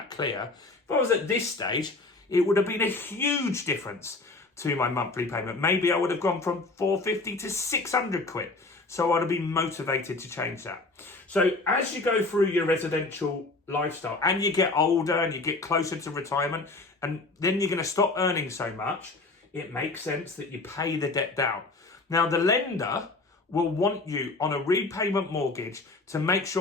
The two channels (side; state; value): right; quieter; 3.3 dB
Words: clear, if I was at this stage, it would have been a huge difference to my monthly payment. Maybe I would have gone from 450 to 600 quid. So I'd have been motivated to change that. So as you go through your residential lifestyle and you get older and you get closer to retirement and then you're going to stop earning so much, it makes sense that you pay the debt down. Now, the lender will want you on a repayment mortgage to make